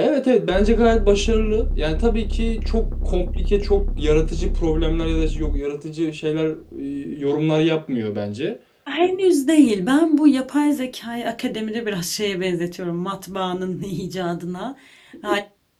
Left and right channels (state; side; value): identical; both; correlation 1.00